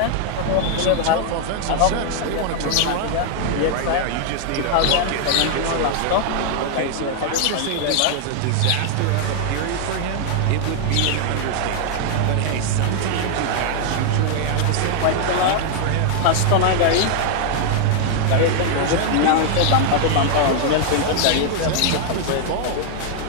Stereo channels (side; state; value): both; different; correlation 0.00